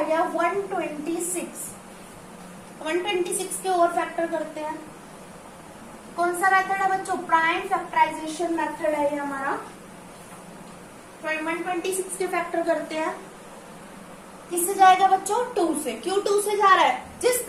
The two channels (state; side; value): identical; both; correlation 1.00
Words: गया 126। 126 के और फैक्टर करते हैं। कौन सा मेथड है बच्चों, प्राइम फैक्टराइजेशन मेथड है ये हमारा। 126 के फैक्टर करते हैं, किससे जाएगा बच्चों, 2 से। क्यों 2 से जा रहा है, जिस